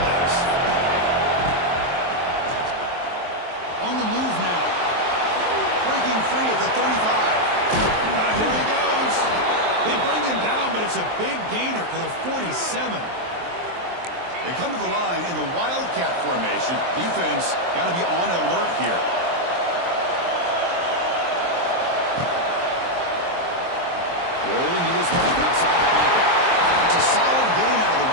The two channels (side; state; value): left; late; 23 ms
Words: is. On the move now. Breaking free at the 35. Here he goes. They bring him down, but it's a big gainer to the 47. They come to the line in the Wildcat formation. Defense got to be on alert here. Rolling to his left outside the pocket. It's a solid gain out of the